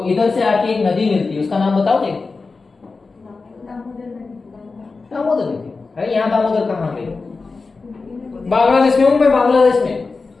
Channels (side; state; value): right; quieter; 4.1 dB